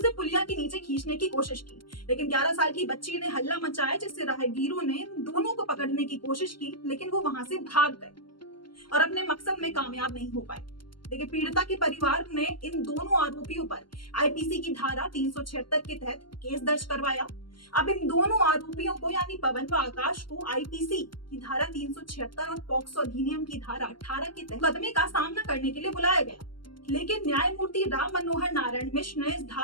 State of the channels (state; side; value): late; right; 0.72 ms